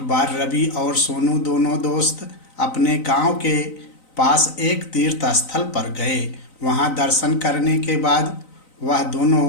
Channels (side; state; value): right; late; 3.9 ms